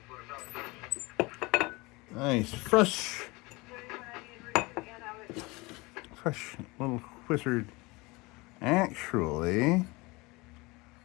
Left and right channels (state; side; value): quieter; right; 24.2 dB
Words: Nice. Fresh little wizard. Actually,